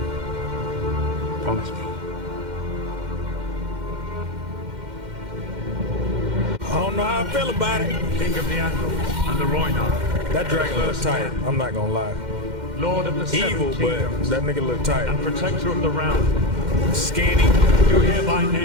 Promise me. I don't know how I feel about it. King of the Andal and the Rhoynar. That dragon looks tight. I'm not gonna lie. Lord of the Evil, Seven but Kingdoms that nigga look tight. and protector of the realm. Skinny. You hereby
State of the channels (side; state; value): left; late; 2.1 ms